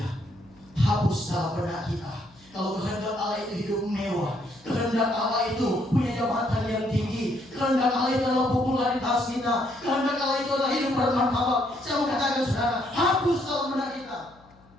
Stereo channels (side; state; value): left; noise; hum, 28 dB below the sound